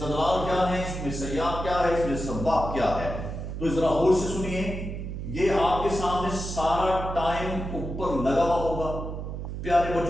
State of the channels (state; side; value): noise; right; hum, 6 dB below the sound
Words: کیا ہے, اس میں سیاق کیا ہے, اس میں سباق کیا ہے. تو ذرا غور سے سنیے, یہ آپ کے سامنے سارا ٹائم اوپر لگا ہوا ہوگا. پیارے